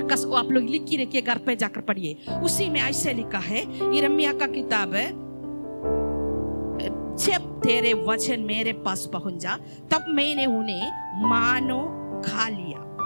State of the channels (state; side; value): inverted; both; correlation -1.00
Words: आप लोग लिख के रखिए, घर पे जाकर पढ़िए। उसी में ऐसे लिखा है, यिर्मयाह का किताब है, जब तेरे वचन मेरे पास पहुंच जा तब मैंने उन्हें मानो खा लिया,